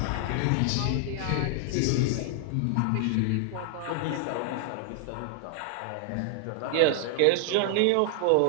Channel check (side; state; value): both; different; correlation -0.01